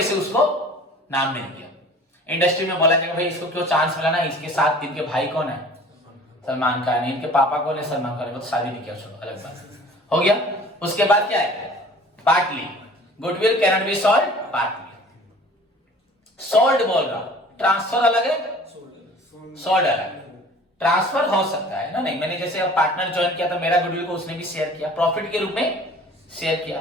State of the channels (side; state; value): both; normal; correlation 0.47